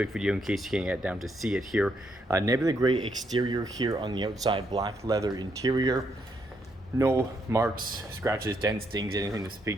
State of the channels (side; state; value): both; normal; correlation 0.76